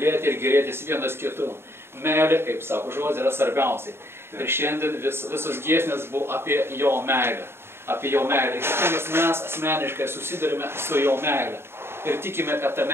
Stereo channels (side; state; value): left; late; 0.12 ms